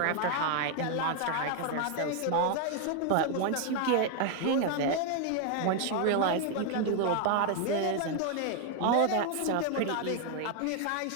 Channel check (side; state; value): both; different; correlation 0.00